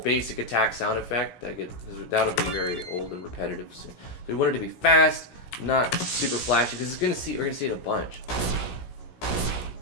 basic attack sound effect. That'll be very old and repetitive. So we want it to be fast, not super flashy, because we're gonna see it a bunch.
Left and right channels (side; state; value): right; late; 16 ms